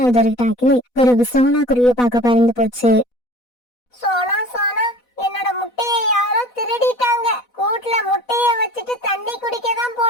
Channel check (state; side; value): late; right; 4.1 ms